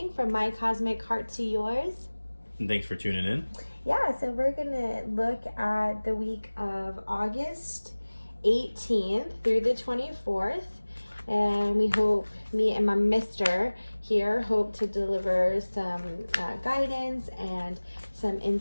from my cosmic heart to yours. And thanks for tuning in. Yeah, so we're going to look at the week of August 18th through the 24th. And we hope, me and my mister here, hope to deliver some guidance and some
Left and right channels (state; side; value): inverted; both; correlation -1.00